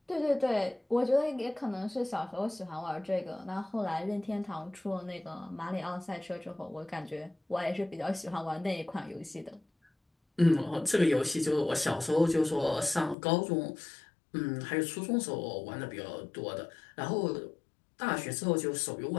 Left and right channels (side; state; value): right; drops out; at 13.2 s